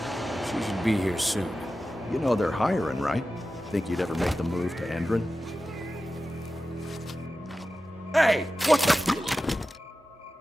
She should be here soon. You know they're hiring, right? Think you'd ever make the move to Endron? Hey! What the...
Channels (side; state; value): both; normal; correlation 0.94